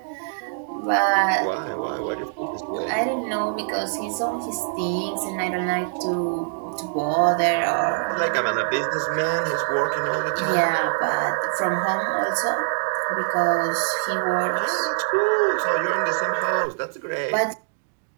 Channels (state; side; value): silent; left; digital silence